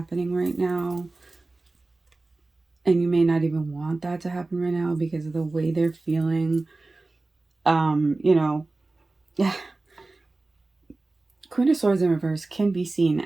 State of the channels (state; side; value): quieter; left; 3.2 dB